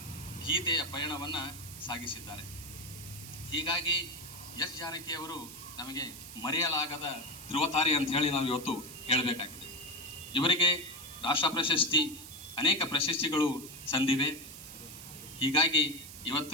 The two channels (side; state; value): right; noise; hiss, 13 dB below the sound